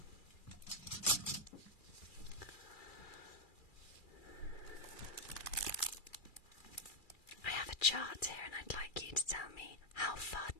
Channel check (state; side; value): late; right; 2.3 ms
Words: chart here, and I'd like you to tell me how far